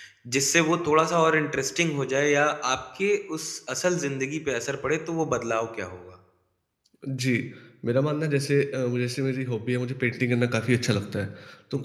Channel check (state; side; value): identical; both; correlation 1.00